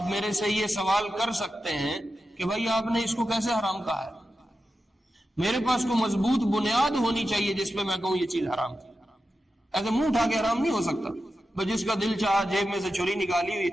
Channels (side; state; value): both; normal; correlation 0.91